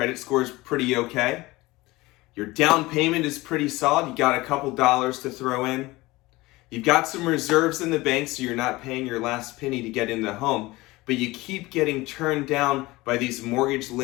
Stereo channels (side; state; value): right; quieter; 20.6 dB